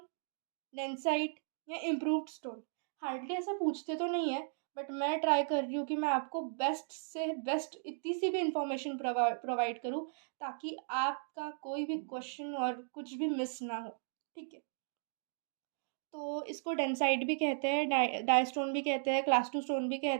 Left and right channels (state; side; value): silent; left; digital silence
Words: densite या इम्प्रूव्ड स्टोन। हार्डली ऐसा पूछते तो नहीं है, बट मैं ट्राई कर रही हूँ कि मैं आपको बेस्ट से बेस्ट इतनी सी भी इंफॉर्मेशन प्रोवाइड करूँ ताकि आपका कोई भी क्वेश्चन और कुछ भी मिस ना हो। ठीक है, तो इसको डेंसाइट भी कहते हैं, डाई स्टोन भी कहते हैं, क्लास 2 स्टोन भी